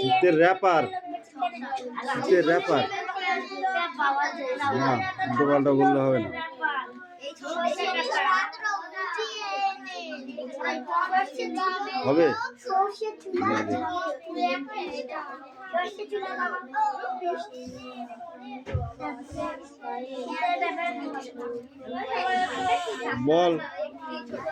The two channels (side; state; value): both; identical; correlation 1.00